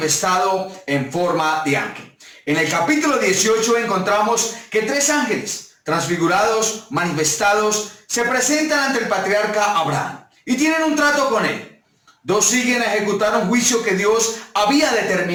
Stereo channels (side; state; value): both; identical; correlation 1.00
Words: en forma de ángel. En el capítulo 18 encontramos que 3 ángeles transfigurados, manifestados, se presentan ante el patriarca Abraham y tienen un trato con él. 2 siguen a ejecutar un juicio que Dios había